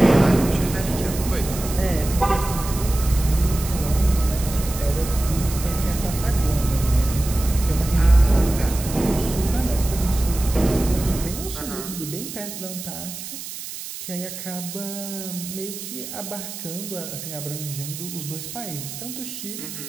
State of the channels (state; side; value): noise; right; hiss, 10 dB below the sound